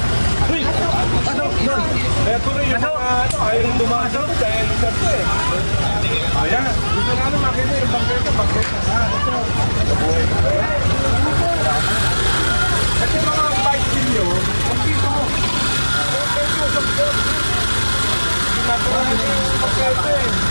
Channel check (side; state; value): both; inverted; correlation -1.00